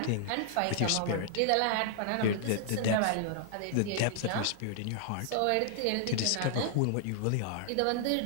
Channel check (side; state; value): both; different; correlation -0.01